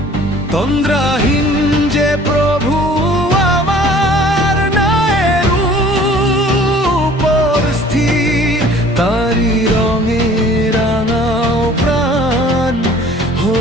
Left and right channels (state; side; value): normal; both; correlation 0.51